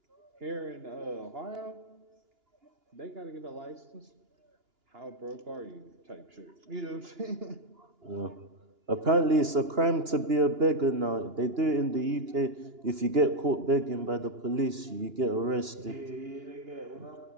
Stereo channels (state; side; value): late; left; 2.9 ms